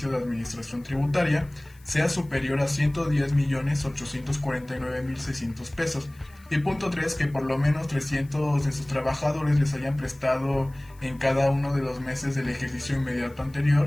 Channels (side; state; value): left; noise; hiss, 29 dB below the sound